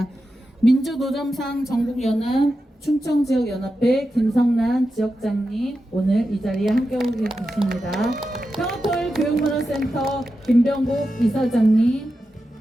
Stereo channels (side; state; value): both; normal; correlation 0.90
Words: 민주노점상 전국연합 충청지역연합회 김성란 지역장님 오늘 이 자리에 함께하고 계십니다. 평화토일 교육문화센터 김병국 이사장님,